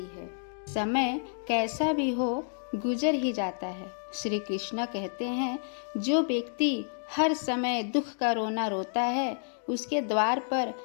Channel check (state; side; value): silent; right; digital silence